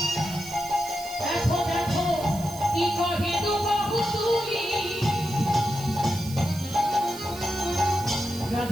দেখো দেখো কি কহে দু বাহু তুলি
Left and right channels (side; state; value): right; noise; hiss, 15 dB below the sound